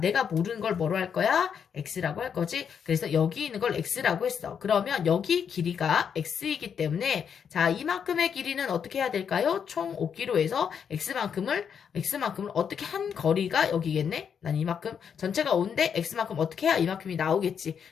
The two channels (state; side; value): quieter; right; 7.4 dB